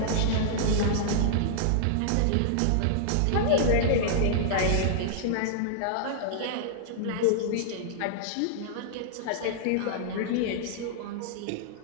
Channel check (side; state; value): both; different; correlation -0.01